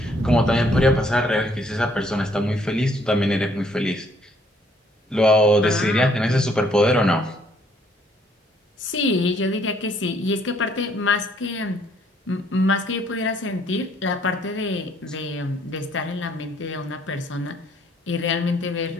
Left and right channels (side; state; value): both; normal; correlation 0.65